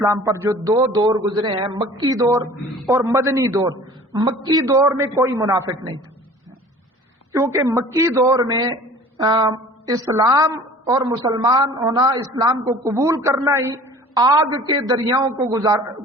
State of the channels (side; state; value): both; normal; correlation 0.45